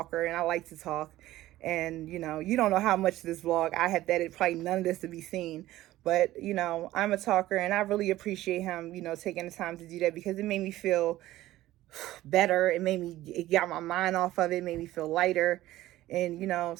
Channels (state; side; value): quieter; left; 15.6 dB